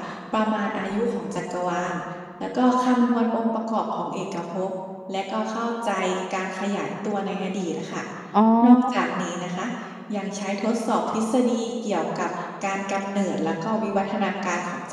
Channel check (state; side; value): identical; both; correlation 1.00